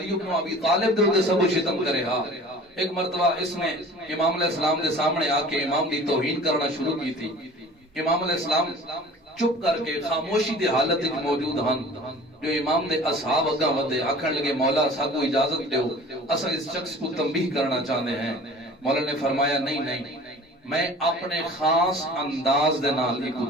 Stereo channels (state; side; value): normal; both; correlation 0.44